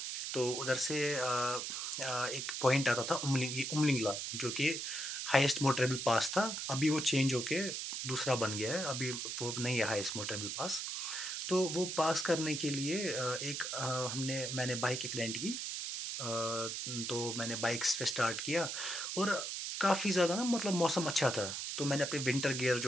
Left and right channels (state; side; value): noise; right; hiss, 4 dB below the sound